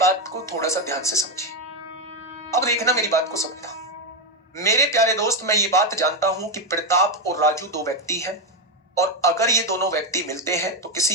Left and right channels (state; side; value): normal; both; correlation 0.07